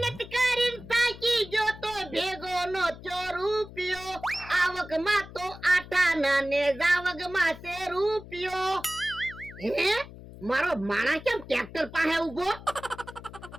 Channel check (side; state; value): left; noise; hum, 16 dB below the sound